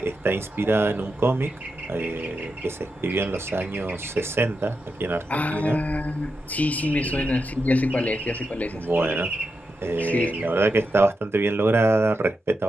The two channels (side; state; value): both; normal; correlation 0.87